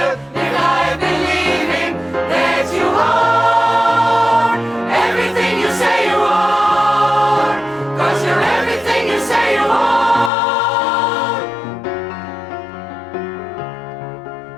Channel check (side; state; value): right; drops out; at 10.3 s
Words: live life believing that you are everything you say you are. 'Cause you're everything you say you are.